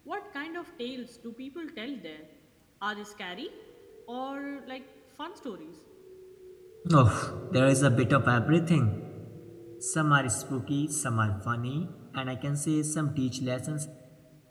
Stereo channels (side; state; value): both; identical; correlation 1.00